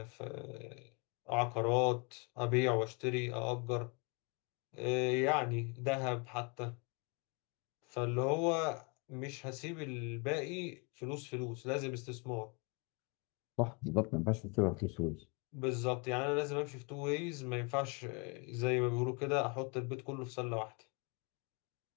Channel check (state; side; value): quieter; right; 31.9 dB